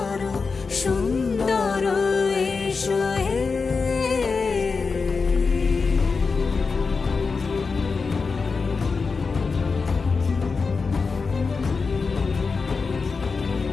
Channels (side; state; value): right; quieter; 4.7 dB